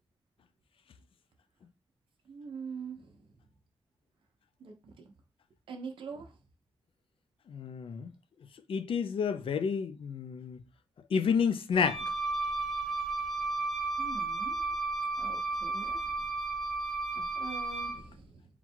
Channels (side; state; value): both; normal; correlation 0.61